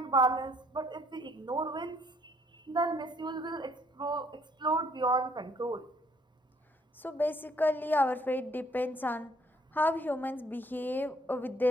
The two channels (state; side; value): normal; both; correlation 0.64